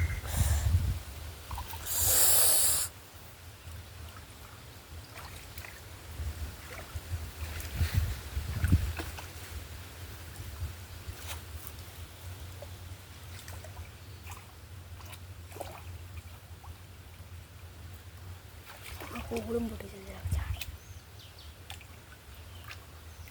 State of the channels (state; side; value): identical; both; correlation 1.00